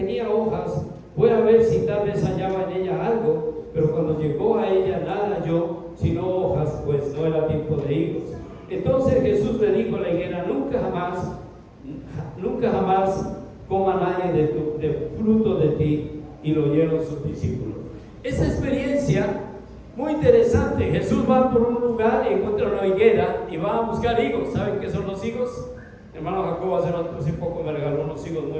hojas, fue a ver si tal vez hallaba en ella algo, pero cuando llegó a ella nada halló, sino hojas, pues no era tiempo de higos. Entonces Jesús le dijo a la higuera: nunca jamás coma nadie de fruto de ti. Y lo oyeron sus discípulos. Esta experiencia muy interesante. Jesús va por un lugar y encuentra una higuera y va a buscar higos. ¿Saben qué son los higos? Mi hermano Jacobo hace poco me regaló unos higos muy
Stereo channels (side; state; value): both; identical; correlation 1.00